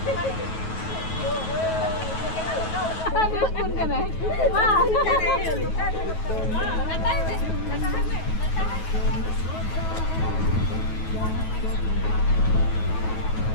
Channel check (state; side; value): late; right; 9.3 ms